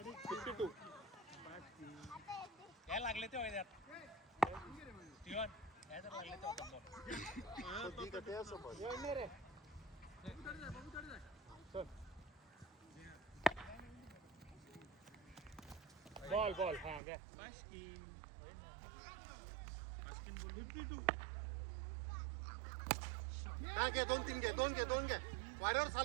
52 काय लागले ते होय त्यात स्टीवन काय तर लागले ते बॉल हां घ्या बास्किन बोल 52 काय घे दोन घे वॉरियर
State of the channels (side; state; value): left; drops out; at 17.0 s